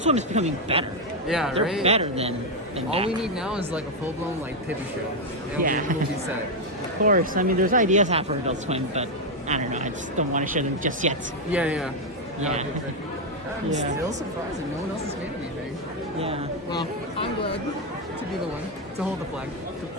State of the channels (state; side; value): normal; both; correlation 0.03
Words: Swim is becoming better. Yeah, They're right? better than all back. we need now is like a full-blown like TV show. And we'll be set. Of course, I mean, there's ideas out for Adult Swim, but I don't know, I just don't want to show them just yet. Yeah. Yeah. I'm still surprised that no one else has made anything. Yeah. Well, I'm glad to be the one to hold the flag. To